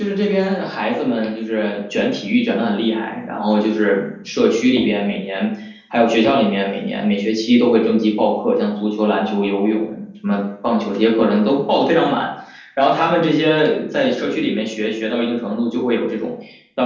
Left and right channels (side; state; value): both; identical; correlation 1.00